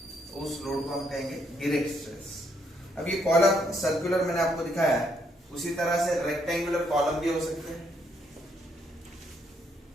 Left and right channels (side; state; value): both; normal; correlation 0.73